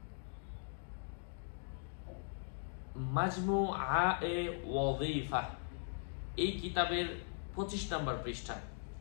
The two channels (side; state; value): right; silent; digital silence